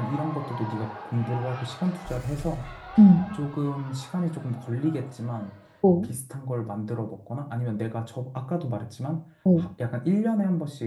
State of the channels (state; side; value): identical; both; correlation 1.00